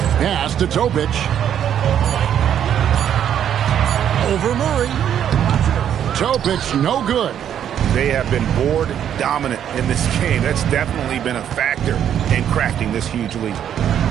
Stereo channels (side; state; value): left; quieter; 9.6 dB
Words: Pass to Topic. Over Murray. Topic no good. They have been board dominant in this game. That's definitely been a factor in cracking this huge lead.